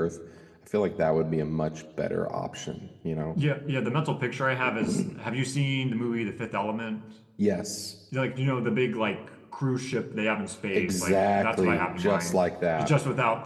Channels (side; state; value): both; identical; correlation 1.00